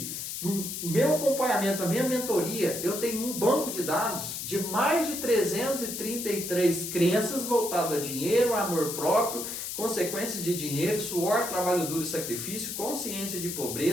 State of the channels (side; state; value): left; noise; hiss, 6 dB below the sound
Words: no meu acompanhamento, na minha mentoria, eu tenho um banco de dados de mais de 333 crenças voltadas a dinheiro, amor próprio, consequências de dinheiro, suor, trabalho duro e sacrifício, consciência de